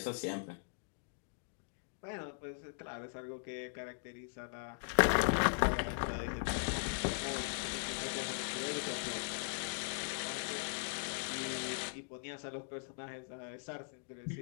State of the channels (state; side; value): silent; right; digital silence